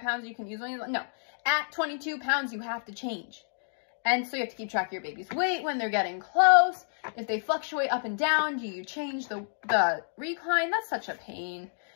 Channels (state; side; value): silent; right; digital silence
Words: pounds you can use when you, no. At 22 pounds, you have to change. And so you have to keep track of your baby's weight when they're getting close. If they fluctuate up and down, do you change the recline? That's such a pain.